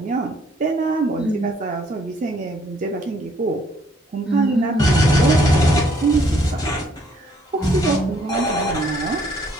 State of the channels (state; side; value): normal; both; correlation 0.65